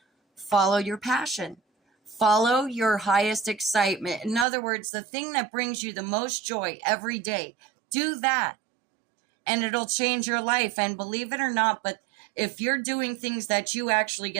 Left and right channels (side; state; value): left; drops out; at 4.5 s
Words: follow your passion. Follow your highest excitement. In other words, the thing that brings you the most joy every day. Do that, and it'll change your life. And believe it or not, but if you're doing things that you actually